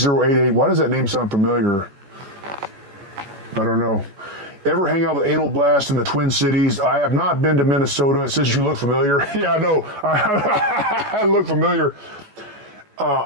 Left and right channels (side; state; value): left; late; 14 ms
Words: Why does that name sound familiar? I don't know. Ever hang out with Anal Blast in the Twin Cities? I have not been to Minnesota. It says you look familiar. Yeah, I know. I look familiar.